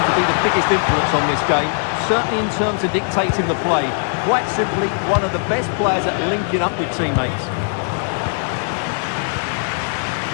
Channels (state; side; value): silent; right; 66 dB below the other